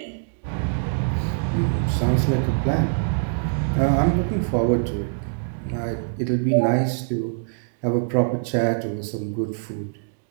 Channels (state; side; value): silent; left; digital silence